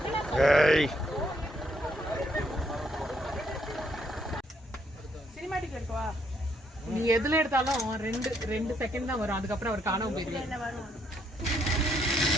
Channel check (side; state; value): both; normal; correlation 0.72